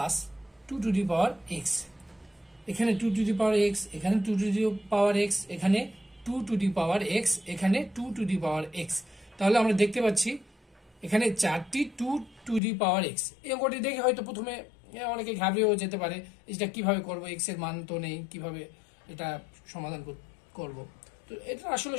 2 to the power x. এখানে 2 টু দি পাওয়ার এক্স, এখানে 2 টু দি পাওয়ার এক্স, এখানে 2 টু দি পাওয়ার এক্স, এখানে 2 to the power x. তাহলে আমরা দেখতে পাচ্ছি এখানে 4টি 2 টু দি পাওয়ার এক্স। এই অঙ্কটি দেখে হয়তো প্রথমে অনেকে ঘাবড়েও যেতে পারে, এটা কিভাবে করব, এক্স এর মান তো নেই, কিভাবে এটা সমাধান করব। তো এটা আসলে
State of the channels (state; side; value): drops out; right; at 12.6 s